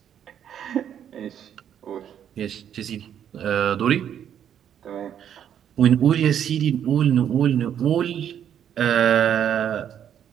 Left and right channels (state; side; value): quieter; left; 9.4 dB